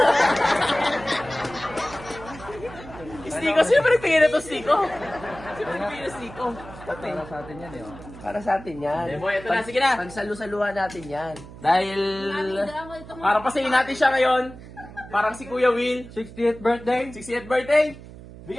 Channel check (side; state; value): right; noise; hum, 16 dB below the sound